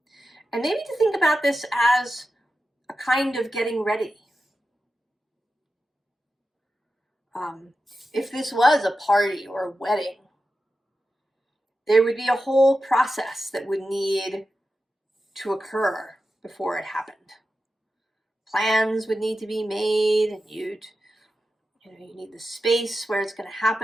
And maybe to think about this as a kind of getting ready. If this was a party or a wedding, there would be a whole process that would need to occur before it happened. Plans would need to be made, and you need the space where it's going to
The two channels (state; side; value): normal; both; correlation 0.91